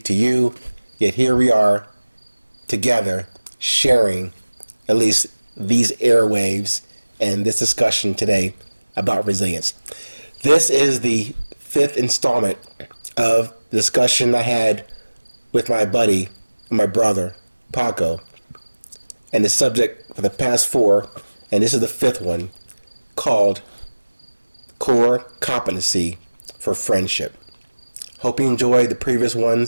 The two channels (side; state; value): both; inverted; correlation -1.00